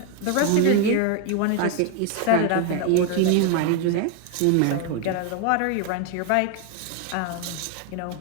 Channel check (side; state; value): both; different; correlation 0.01